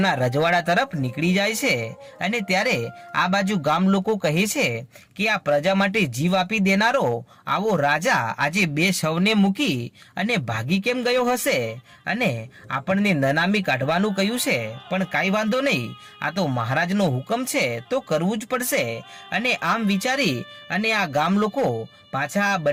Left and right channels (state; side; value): identical; both; correlation 1.00